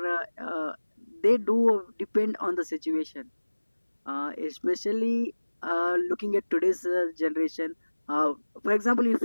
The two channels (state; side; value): inverted; both; correlation -1.00